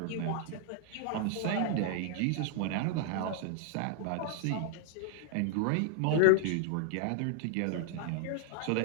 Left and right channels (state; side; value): different; both; correlation 0.00